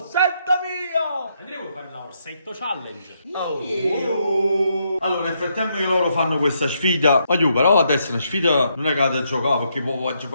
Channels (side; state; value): both; inverted; correlation -0.76